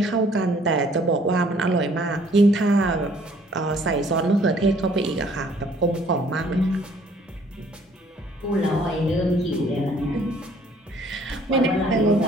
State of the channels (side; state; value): both; normal; correlation 0.59